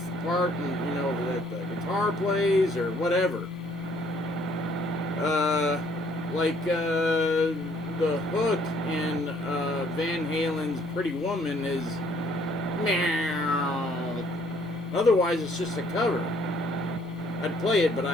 part, that the guitar plays or whatever. The hook in Van Halen's Pretty Woman is meow. Otherwise, it's just a cover. I'd play it, but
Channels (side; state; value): both; normal; correlation 0.63